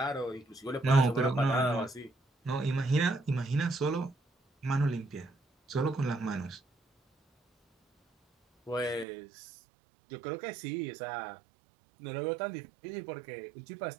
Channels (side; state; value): left; drops out; at 9.1 s